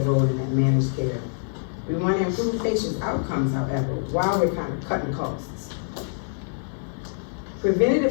in that managed care. We want to improve patients' outcomes, however, while we're kind of cutting costs.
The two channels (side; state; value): right; silent; digital silence